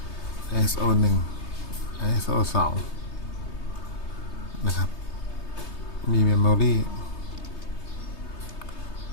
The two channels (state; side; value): late; right; 3.3 ms